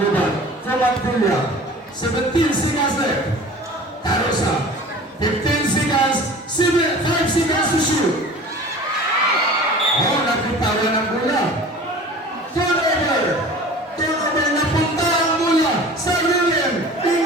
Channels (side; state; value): both; normal; correlation 0.41